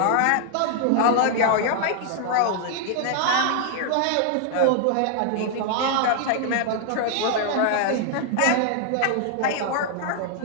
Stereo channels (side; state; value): both; different; correlation 0.00